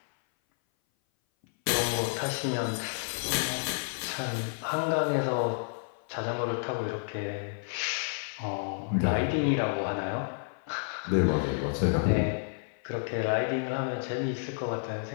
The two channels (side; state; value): right; silent; 57 dB below the other